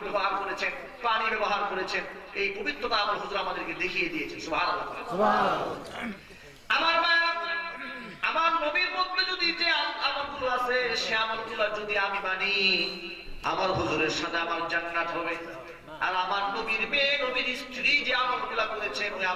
ব্যবহার করেছেন, পানি ব্যবহার করেছেন। এই পবিত্রতা আমার হুজুর আমাদেরকে দেখিয়ে দিয়েছেন। সুবহানাল্লাহ। আমার মা, আমার নবীর মধ্যে যদি যে আমলগুলো আছে, সে আমলগুলো যদি আমি মানি, আমার হুজুরের সাথে আমার জান্নাত হবে। আর আমার নবীর মেয়ে, নবীর স্ত্রী যে আমলগুলো করেছেন, ওই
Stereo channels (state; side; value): identical; both; correlation 1.00